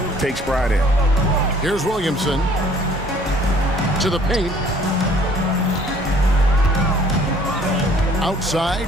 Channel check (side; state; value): both; normal; correlation 0.56